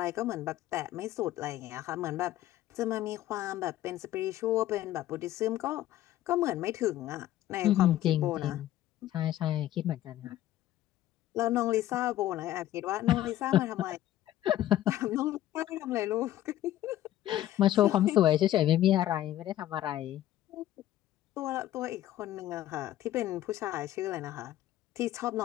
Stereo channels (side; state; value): right; quieter; 13.5 dB